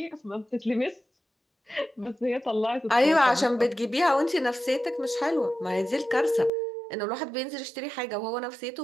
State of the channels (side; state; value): left; drops out; at 6.5 s